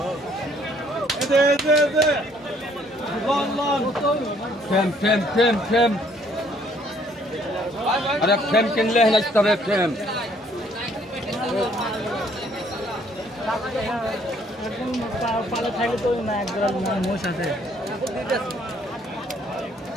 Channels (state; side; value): normal; both; correlation 0.63